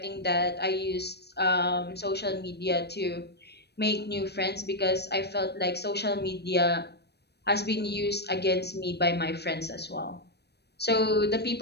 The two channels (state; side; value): late; right; 0.48 ms